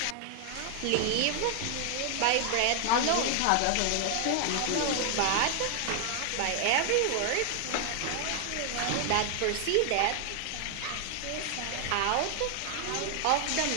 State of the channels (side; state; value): both; different; correlation 0.00